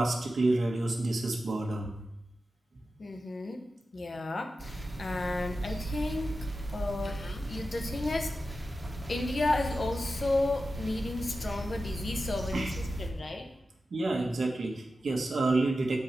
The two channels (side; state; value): both; normal; correlation 0.92